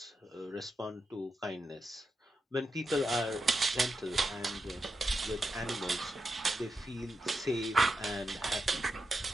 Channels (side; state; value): both; normal; correlation 0.87